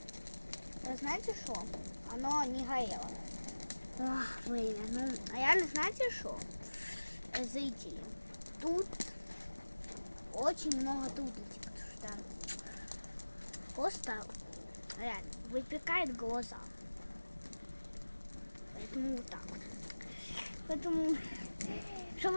Вы знаете что? Оно не горело. Ох, время. Ну, а реально знаете что? Зайти. Тут очень много трудностей, потому что просто реально выпекает глаза. Поэтому вот так вот. Поэтому, чтобы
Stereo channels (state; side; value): inverted; both; correlation -1.00